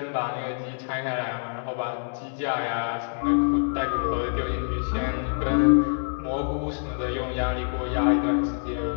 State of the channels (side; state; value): right; silent; digital silence